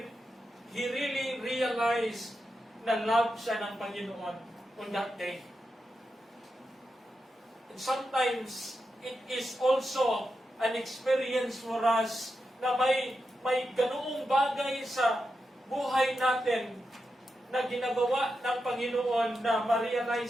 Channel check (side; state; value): both; normal; correlation 0.88